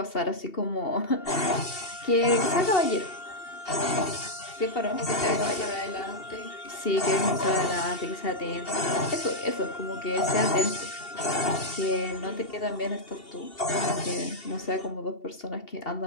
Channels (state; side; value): late; right; 2.7 ms